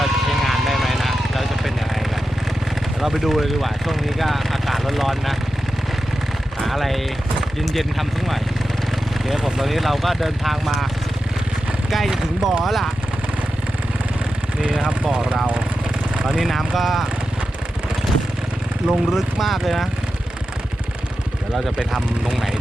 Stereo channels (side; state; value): both; normal; correlation 0.91